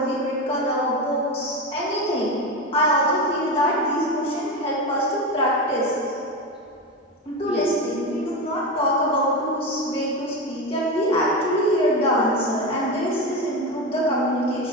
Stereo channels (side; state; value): both; normal; correlation 0.19